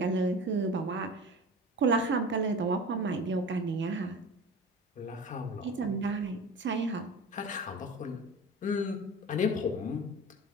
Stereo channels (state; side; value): normal; both; correlation 0.35